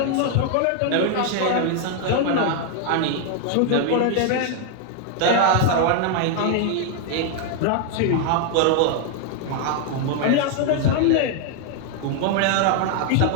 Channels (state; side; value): different; both; correlation 0.00